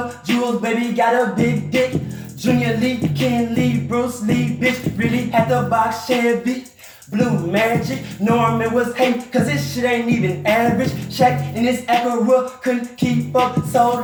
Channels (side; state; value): both; identical; correlation 1.00